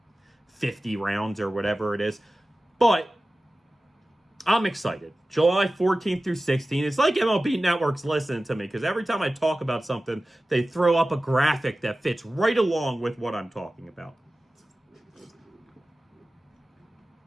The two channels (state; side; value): normal; both; correlation 0.96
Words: 50 rounds or whatever it is. But I'm excited. July 14th through 16th. It's like MLB Network's listening to me because every time I talk about something, they throw up a graphic that fits right along with what I'm talking about.